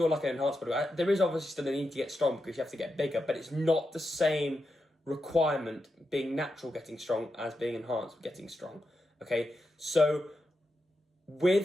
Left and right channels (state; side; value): normal; both; correlation 0.87